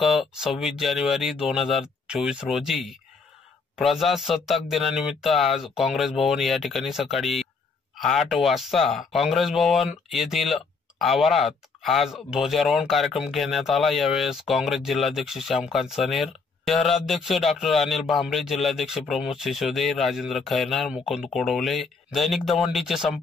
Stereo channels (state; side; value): quieter; right; 4.6 dB